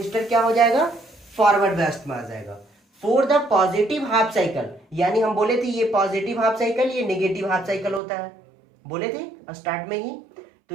क्या हो जाएगा, फॉरवर्ड बैस्ट में आ जाएगा। For the positive half cycle, यानी हम बोले थे ये पॉजिटिव हाफ साइकिल, ये नेगेटिव हाफ साइकिल होता है, बोले थे स्टार्ट में ही। तो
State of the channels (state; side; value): drops out; left; at 8.0 s